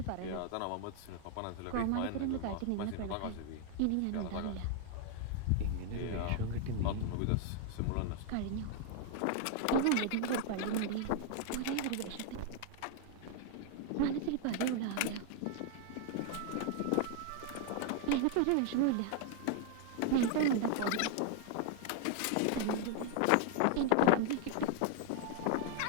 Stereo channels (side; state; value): both; different; correlation 0.00